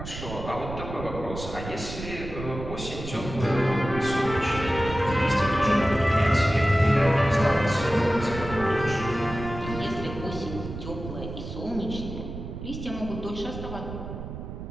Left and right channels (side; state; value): right; noise; rumble, 9 dB below the sound